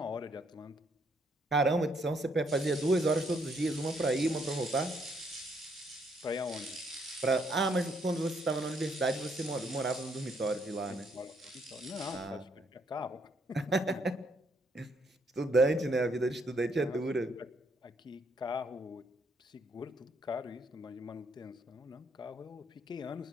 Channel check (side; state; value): both; normal; correlation 0.71